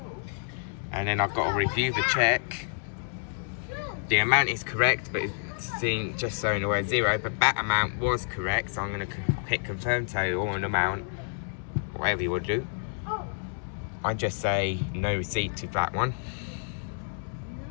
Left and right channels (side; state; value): right; silent; digital silence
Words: And then I've got to review the check. The amount is correct, but it's saying just showing the word zero, but that amount was correct, so I'm going to hit confirm total and amount, whatever you would do. I just say no receipt to that one.